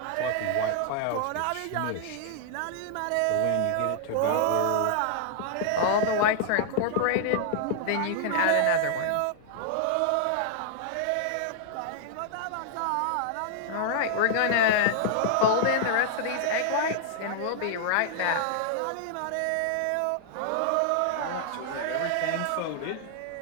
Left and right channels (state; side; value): different; both; correlation -0.01